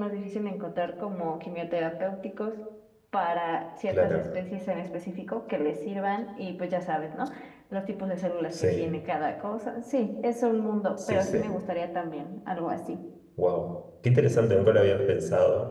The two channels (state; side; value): identical; both; correlation 1.00